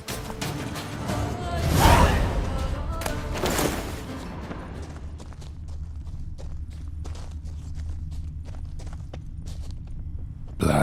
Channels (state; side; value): identical; both; correlation 1.00